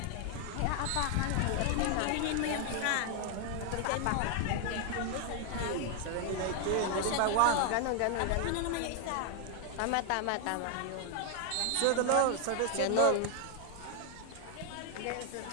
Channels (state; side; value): different; both; correlation 0.00